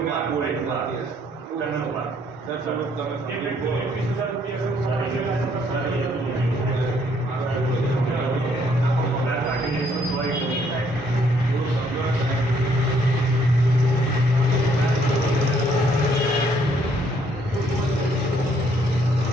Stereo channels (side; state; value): both; normal; correlation 0.67